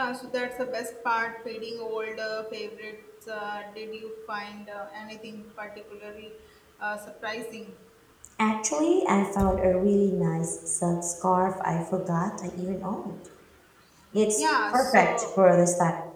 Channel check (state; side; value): identical; both; correlation 1.00